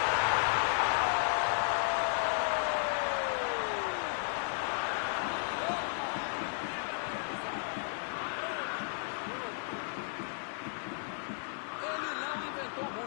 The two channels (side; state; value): right; silent; 55 dB below the other